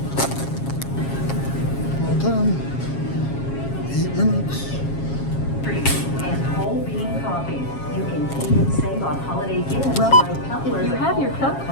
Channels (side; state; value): right; late; 7.4 ms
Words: Well done. 8 minutes. And whole bean coffee. You can even save on holiday gifts Well, like couplers. if you have your club